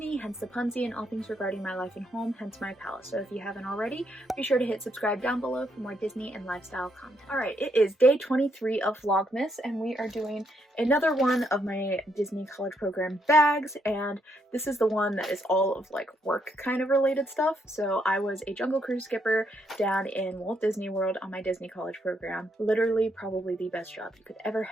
hence the Punsy, and all things regarding my life and home, hence my palace. So if you haven't already, be sure to hit subscribe down below for more Disney and lifestyle content. Alright, it is day 23 of Vlogmas, and we are doing another one of my Disney College Program bags, and this is the one that is all of like work kind of related stuff. So I was a Jungle Cruise skipper down in Walt Disney World on my Disney College Program. Literally probably the best job you could ever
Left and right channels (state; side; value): normal; both; correlation 0.76